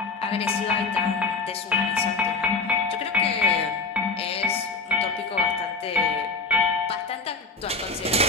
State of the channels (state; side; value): quieter; right; 4.0 dB